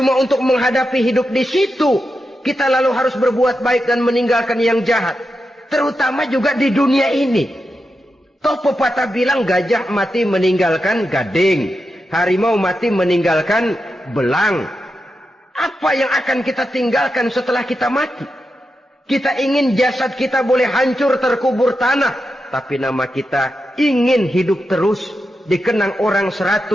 untuk menghadapi hidup di situ, kita lalu harus berbuat baik dan meninggalkan yang jahat. Terutama juga di dunia ini. Toh pepatah bilang gajah mati meninggalkan gading, harimau mati meninggalkan belang. Apa yang akan kita tinggalkan setelah kita mati? Kita ingin jasad kita boleh hancur terkubur tanah, tapi nama kita ingin hidup terus, dikenang orang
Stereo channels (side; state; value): both; normal; correlation 0.88